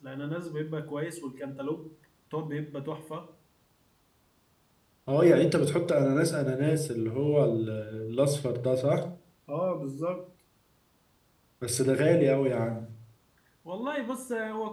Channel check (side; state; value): both; identical; correlation 1.00